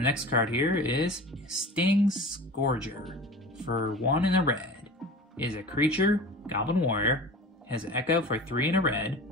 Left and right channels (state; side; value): normal; both; correlation 0.36